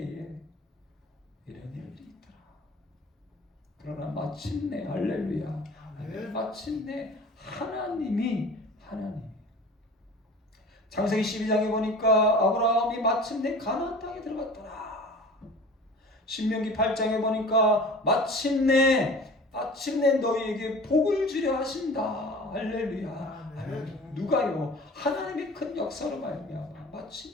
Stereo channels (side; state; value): both; normal; correlation 0.40